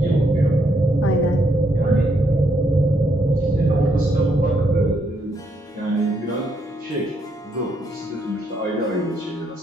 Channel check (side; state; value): both; normal; correlation 0.75